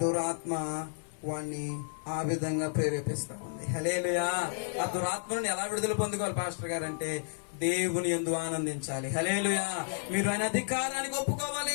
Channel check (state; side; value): silent; right; 57 dB below the other